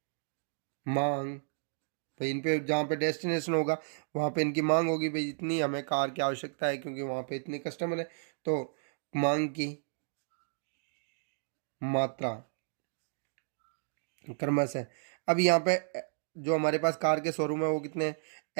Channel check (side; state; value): left; silent; digital silence